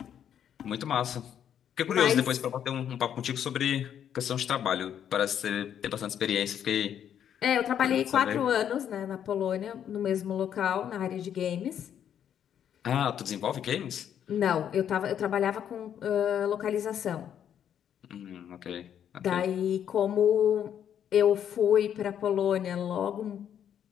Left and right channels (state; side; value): quieter; right; 9.3 dB